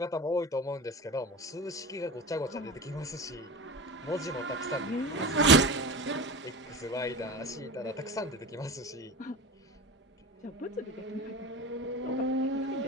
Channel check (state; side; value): normal; both; correlation 0.30